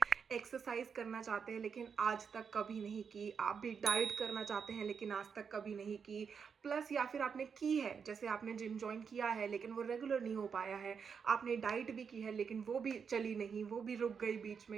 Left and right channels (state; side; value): quieter; left; 6.4 dB